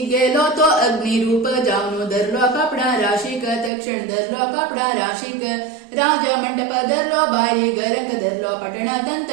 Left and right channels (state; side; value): drops out; left; at 3.7 s